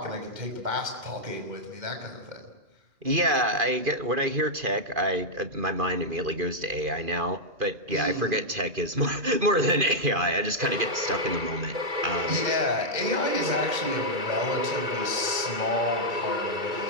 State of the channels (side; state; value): left; late; 2.1 ms